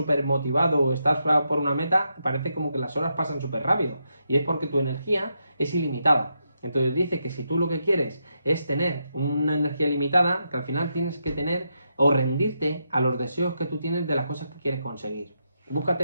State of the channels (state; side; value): inverted; both; correlation -0.82